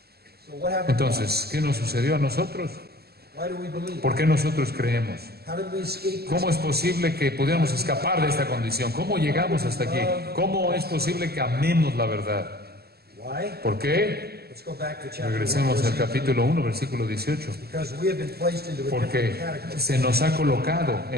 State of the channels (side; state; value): left; late; 0.46 ms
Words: Entonces, ¿qué nos sucedió a nosotros? ¿Por qué nosotros creemos? ¿Cómo es posible que pudiéramos escapar de esta condición? ¿Cómo llegamos hasta aquí? ¿Cómo es posible que amemos la verdad? ¿Por qué? Regresemos al capítulo 1, versículo 18. Porque se nos ha colocado